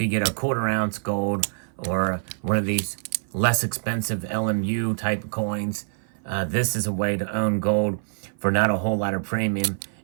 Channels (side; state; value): left; silent; 56 dB below the other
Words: get a quarter ounce gold or one of these less expensive LMU type coins, this is a way to own gold for not a whole lot of premium